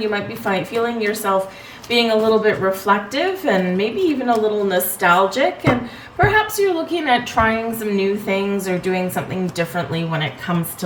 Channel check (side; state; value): both; identical; correlation 1.00